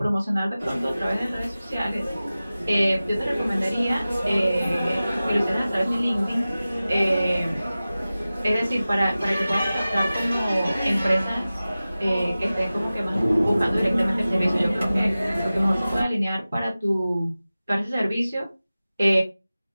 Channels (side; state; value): both; inverted; correlation -0.96